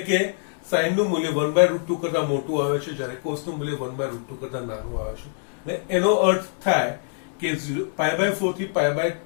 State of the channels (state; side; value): silent; right; 62 dB below the other